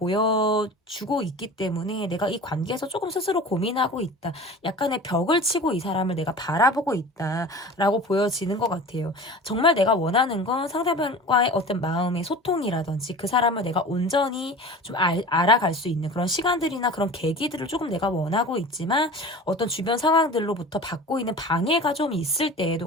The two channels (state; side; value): normal; both; correlation 0.37